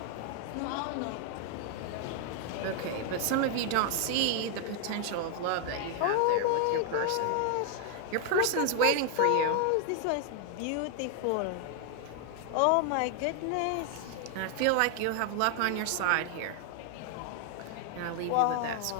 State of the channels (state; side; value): different; both; correlation 0.00